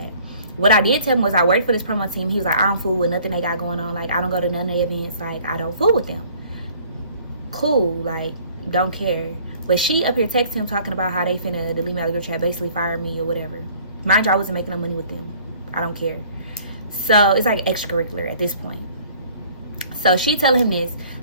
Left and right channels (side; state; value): both; inverted; correlation -0.55